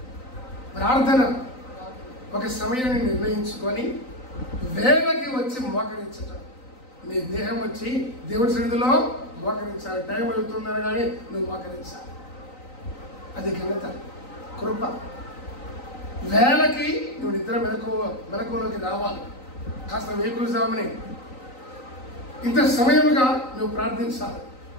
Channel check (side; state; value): right; late; 3.9 ms